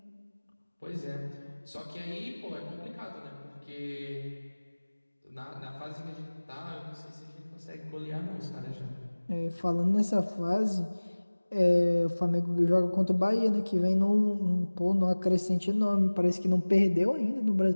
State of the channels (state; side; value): inverted; both; correlation -1.00